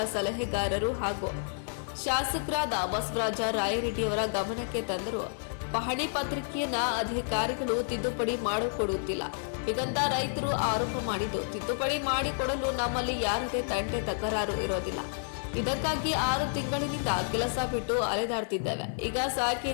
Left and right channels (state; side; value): silent; right; 58 dB below the other